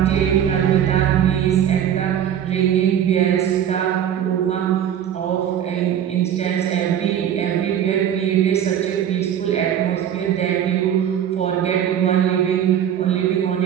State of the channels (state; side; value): quieter; left; 9.7 dB